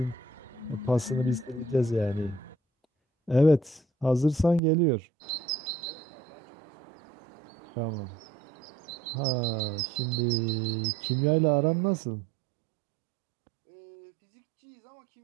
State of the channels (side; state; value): left; drops out; at 4.6 s